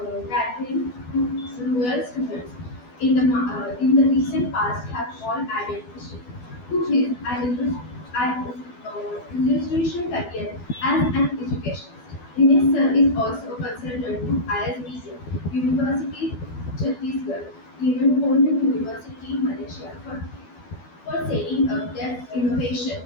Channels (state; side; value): late; right; 12 ms